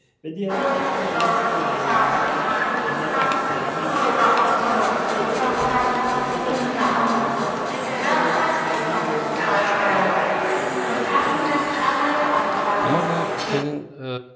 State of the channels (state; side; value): identical; both; correlation 1.00